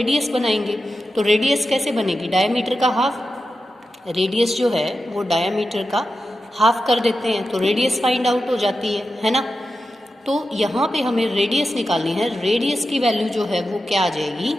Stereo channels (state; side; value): normal; both; correlation 0.91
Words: बनाएंगे। तो रेडियस कैसे बनेगी, डायमीटर का हाफ। रेडियस जो है वो डायमीटर का हाफ कर देते हैं, तो रेडियस फाइंड आउट हो जाती है ना। तो यहाँ पे हमें रेडियस निकालनी है। रेडियस की वैल्यू जो है वो क्या आ जाएगी,